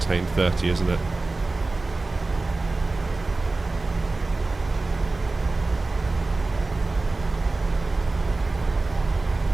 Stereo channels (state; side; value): quieter; left; 3.3 dB